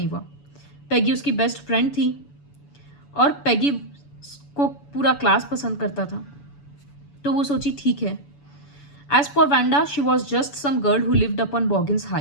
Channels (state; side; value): late; right; 7.0 ms